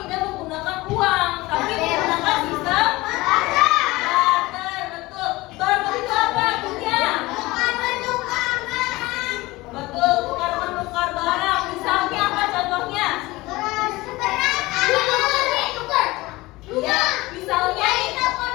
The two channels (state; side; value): quieter; right; 20.4 dB